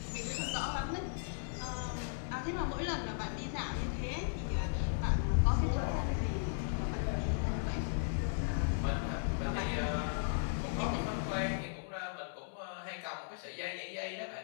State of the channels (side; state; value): right; silent; 53 dB below the other